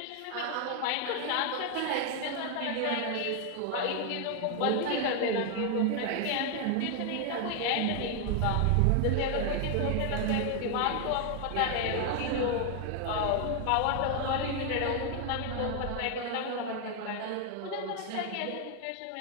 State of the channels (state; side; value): different; both; correlation 0.00